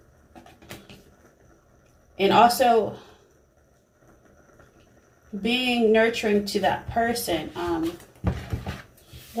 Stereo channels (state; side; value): identical; both; correlation 1.00